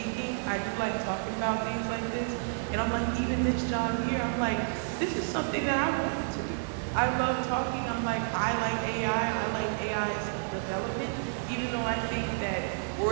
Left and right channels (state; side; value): silent; left; digital silence